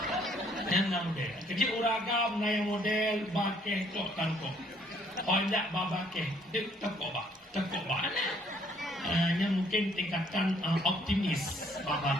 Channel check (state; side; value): normal; both; correlation 0.64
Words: Yang model. Kerja uragam na yang model bakeh tok tangkok. Hendak babakeh dek tekok ba yang mungkin tingkatan optimis